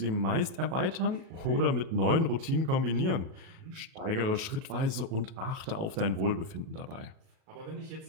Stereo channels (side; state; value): left; late; 37 ms